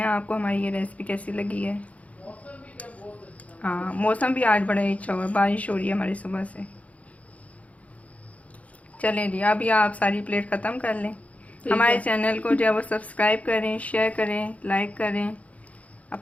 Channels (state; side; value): late; right; 0.067 ms